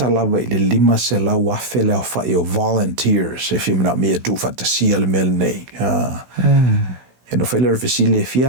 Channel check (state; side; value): late; left; 16 ms